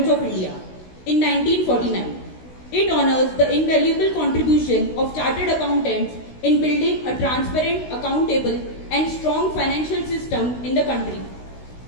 of India in 1949. It honors the invaluable contribution of chartered accountants in building a transparent, accountable and strong financial system in the country.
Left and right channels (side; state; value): right; late; 16 ms